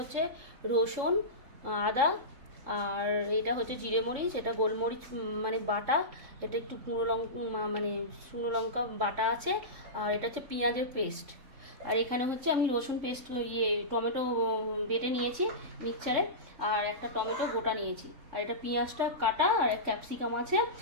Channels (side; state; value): left; late; 3.5 ms